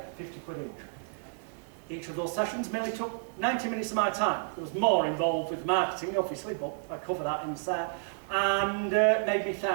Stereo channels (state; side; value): silent; left; digital silence